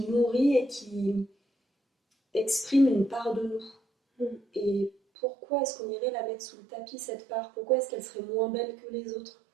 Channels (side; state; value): left; drops out; at 5.0 s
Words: nourrit et qui exprime une part de nous. Et pourquoi est-ce qu'on irait la mettre sous le tapis, cette part? Pourquoi est-ce qu'elle serait moins belle que les autres?